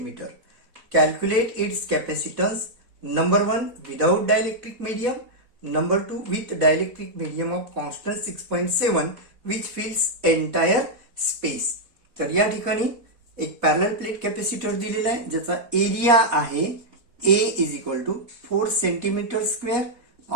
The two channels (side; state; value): left; late; 4.1 ms